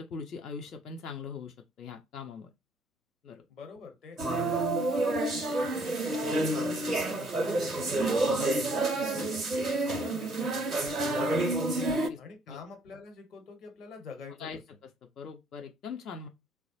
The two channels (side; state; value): both; normal; correlation 0.64